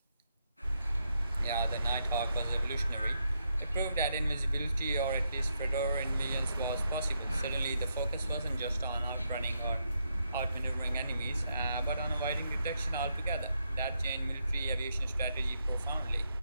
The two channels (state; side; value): inverted; both; correlation -0.80